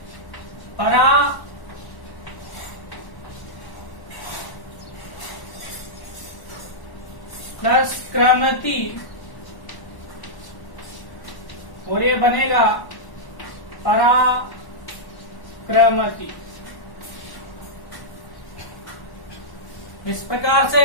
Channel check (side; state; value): right; late; 1.1 ms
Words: परा प्लस क्रमती और ये बनेगा पराक्रमति। इस प्रकार से